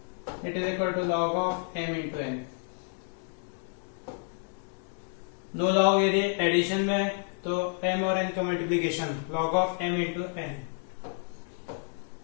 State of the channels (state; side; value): silent; right; 57 dB below the other